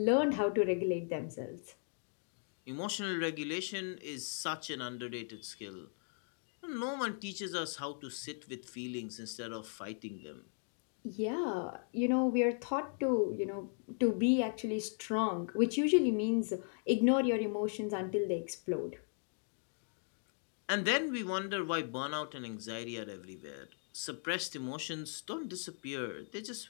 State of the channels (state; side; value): silent; right; 53 dB below the other